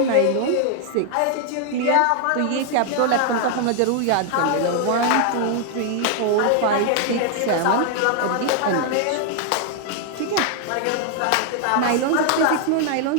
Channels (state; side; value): different; both; correlation 0.00